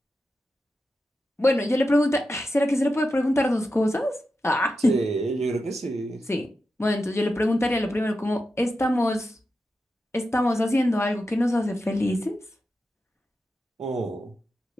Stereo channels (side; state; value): both; normal; correlation 0.90